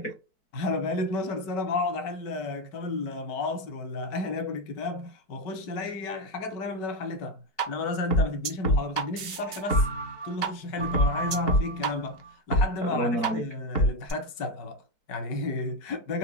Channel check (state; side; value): late; right; 4.6 ms